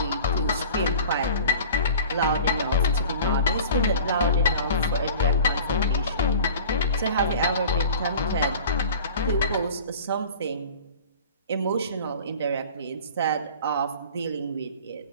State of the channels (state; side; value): inverted; both; correlation -0.42